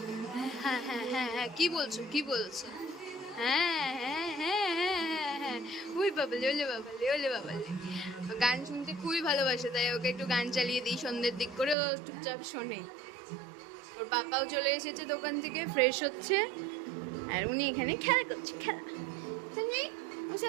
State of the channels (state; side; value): drops out; left; at 11.8 s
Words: হ্যাঁ হ্যাঁ হ্যাঁ হ্যাঁ, কি বলছো কি বলছো? হ্যাঁ হ্যাঁ হ্যাঁ হ্যাঁ হ্যাঁ হ্যাঁ, ওই বাবালে, ওলে বাবালে, ওলে বাবালে। গান শুনতে খুবই ভালোবাসে, তাই ওকে একটু গান চালিয়ে দিই সন্ধ্যের দিক করে, ও চুপচাপ শোনে। ওর পাপাও চলে এসেছে দোকান থেকে, ফ্রেশ হচ্ছে, আর উনি এখানে খেলা করছে। খেলা সানভি, ও